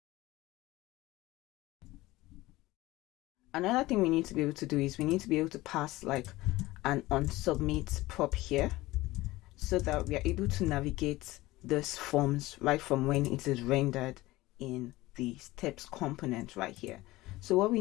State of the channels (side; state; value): right; quieter; 18.8 dB